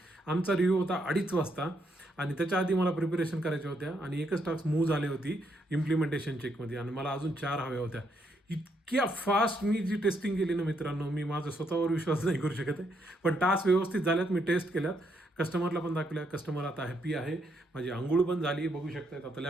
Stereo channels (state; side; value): normal; both; correlation 0.76